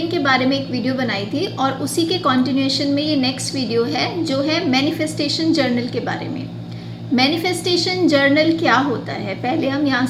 के बारे में एक वीडियो बनाई थी और उसी के कंटिन्यूएशन में ये नेक्स्ट वीडियो है जो है मैनिफेस्टेशन जर्नल के बारे में। मैनिफेस्टेशन जर्नल क्या होता है, पहले हम यहाँ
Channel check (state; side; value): identical; both; correlation 1.00